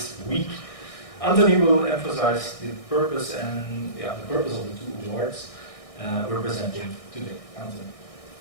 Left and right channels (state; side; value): late; right; 1.6 ms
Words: week. Anthony will emphasize the purpose and the purpose of the two awards we're presenting today. Anthony.